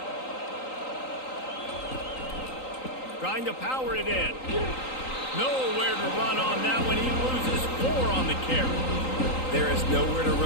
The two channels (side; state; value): right; late; 3.8 ms